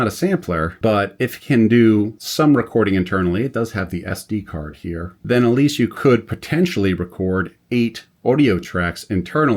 a sampler, but if it can do some recording internally, it does have the SD card here, then at least you could potentially record 8 audio tracks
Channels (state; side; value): identical; both; correlation 1.00